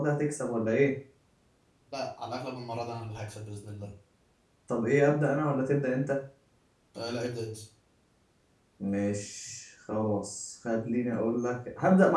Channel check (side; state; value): both; identical; correlation 1.00